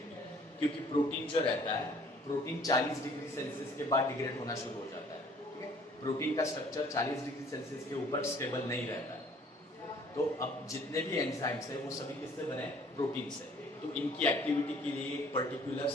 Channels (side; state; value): both; normal; correlation 0.56